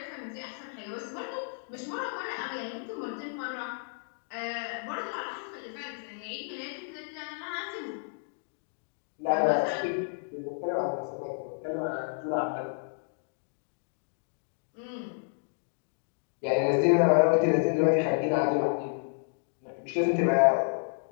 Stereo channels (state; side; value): silent; right; digital silence